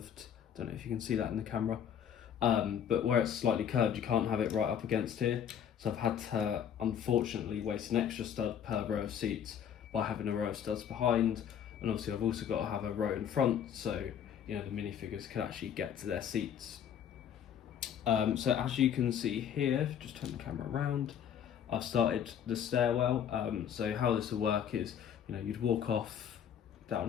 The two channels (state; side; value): quieter; right; 8.8 dB